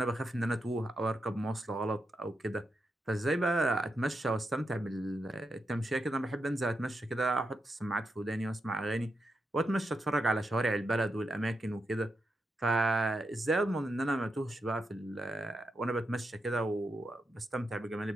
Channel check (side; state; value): both; normal; correlation 0.85